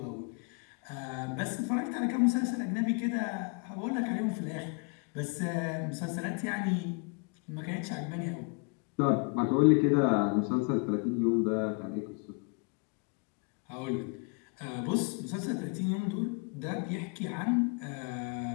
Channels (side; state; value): right; quieter; 33.7 dB